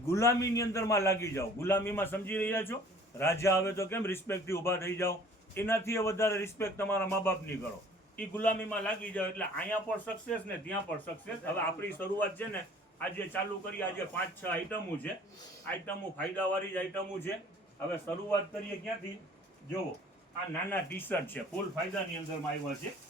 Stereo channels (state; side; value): normal; both; correlation 0.51